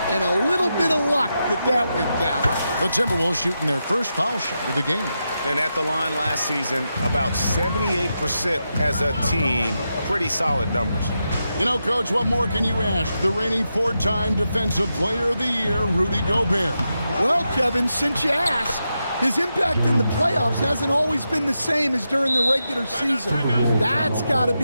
and a little bit of luck that went down. The Timberwolves shooting their first foul shot of the game. And at the line last season, about 78% as a team. Pretty solid numbers. You know, Coach, what more can you ask? The reigning four-time Defensive Player of the Year, Rudy Gobert. Well, Kevin, since you asked, his impact in the playoffs hasn't always been the same as during the regular season. That's got to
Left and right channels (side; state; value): both; inverted; correlation -0.87